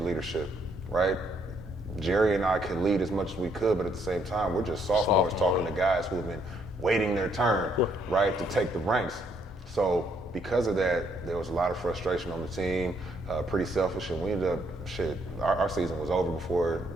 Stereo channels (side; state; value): both; normal; correlation 0.70